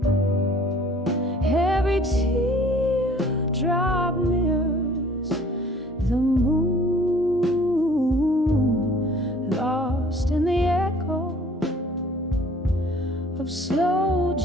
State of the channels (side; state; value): both; normal; correlation 0.53